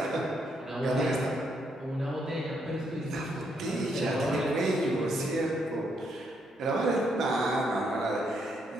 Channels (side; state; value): both; normal; correlation 0.75